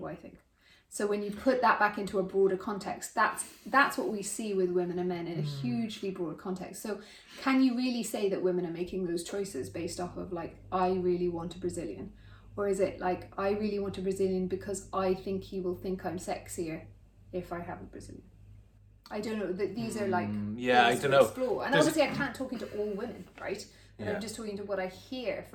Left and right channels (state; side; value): identical; both; correlation 1.00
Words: I think? So when you put that back into a broader context, that's what we see with women and men in a hugely broad context. So can you really say that women are making those choices based off of like, I really want a Brazilian? Or is it like, I really want a Brazilian because I think he will think I'm sexier if I have a Brazilian? I don't know. These are like, I don't know. Explore. And obviously I can't talk into all women, right? And I'm just talking to what I hear